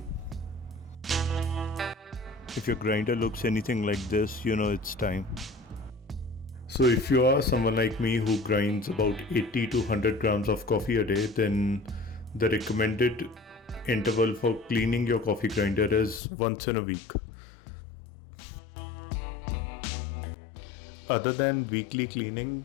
If your grinder looks anything like this, you know it's time. So if you are someone like me who grinds about 80 to 100 grams of coffee a day, then the recommended interval for cleaning your coffee grinder is once in a week. Other than weekly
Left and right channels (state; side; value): drops out; right; at 16.2 s